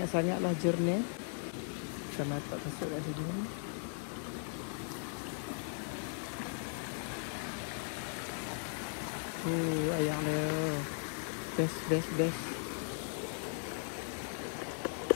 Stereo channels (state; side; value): silent; right; 53 dB below the other